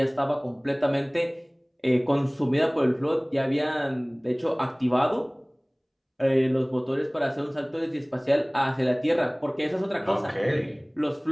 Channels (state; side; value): identical; both; correlation 1.00